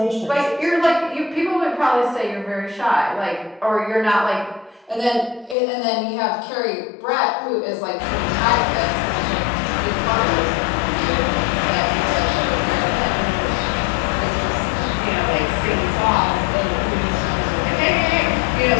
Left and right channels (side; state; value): right; drops out; at 5.6 s